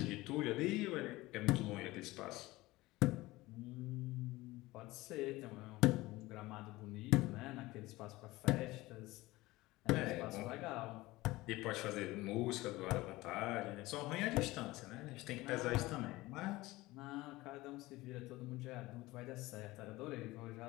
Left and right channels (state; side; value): quieter; right; 19.5 dB